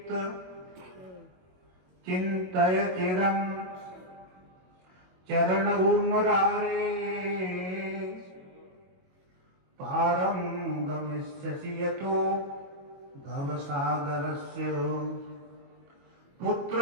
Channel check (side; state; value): left; late; 22 ms